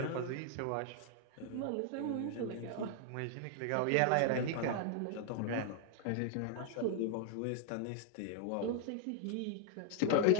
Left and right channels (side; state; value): both; different; correlation 0.00